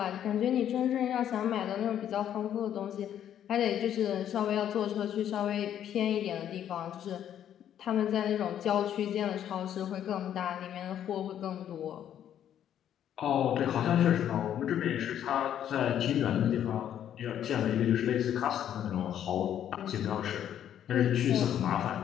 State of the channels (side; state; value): right; quieter; 10.2 dB